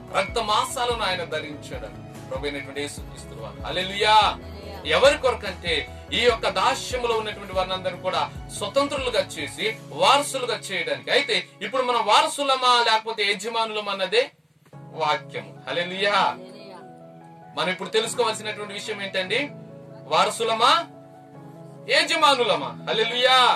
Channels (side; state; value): both; identical; correlation 1.00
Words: రక్త మాంసాలను ఆయన ధరించాడట ప్రభువైనటువంటి యేసుక్రీస్తు వారు. హల్లెలూయా. ఎవరి కొరకంటే ఈ యొక్క దాస్యములో ఉన్నటువంటి వారిని కూడా స్వతంత్రులుగా చేసి వారసులుగా చేయడానికి. అయితే ఇప్పుడు మనం వారసులమా లేకపోతే యజమానులమా అన్నదే వాక్యము. హల్లెలూయా. మనం ఇప్పుడు తెలుసుకోవాల్సినటువంటి విషయం ఏంటండి? వారసులమా యజమానులమా? హల్లెలూయా.